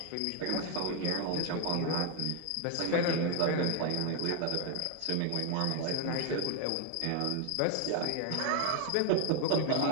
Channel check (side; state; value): both; different; correlation 0.00